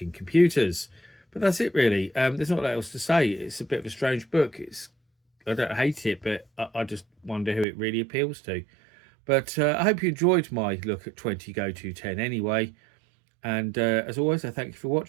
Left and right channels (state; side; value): drops out; left; at 7.7 s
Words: computers. But that's it really. There's not a lot else to say. It's a bit of a strange book. I don't hate it, but I just wonder who it really appeals to. But I hope you enjoyed my look at 20 GOTO 10 anyway. And as always, I thank you for